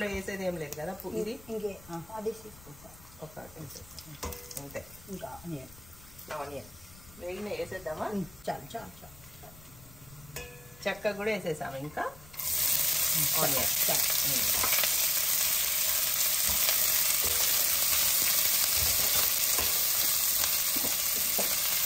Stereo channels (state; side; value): noise; left; rumble, 22 dB below the sound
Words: వేసేది ఏం లేదు కదా, ఇది ఒక అంతే. ఇంకా ఆనియన్ వేగిన వేసేద్దామా? చాలు చాలు చాలు. చెక్క కూడా వేసేసాము. ఇంకా ఆనియన్